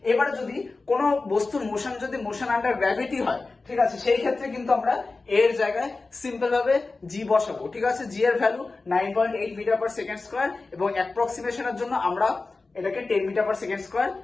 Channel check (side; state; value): right; quieter; 3.7 dB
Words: এবারে যদি কোনো বস্তুর মোশন যদি মোশন আন্ডার গ্র্যাভিটি হয়, ঠিক আছে, সেই ক্ষেত্রে কিন্তু আমরা এর জায়গায় সিম্পল ভাবে g বসাবো, ঠিক আছে। g এর value 9.8 metre per second square এবং অ্যাপ্রক্সিমেশনের জন্য আমরা এটাকে 10 মিটার পার সেকেন্ড স্কয়ার